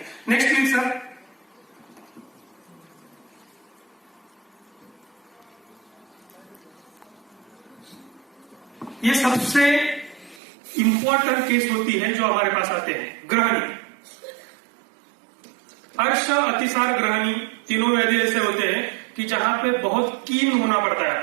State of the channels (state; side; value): drops out; left; at 10.4 s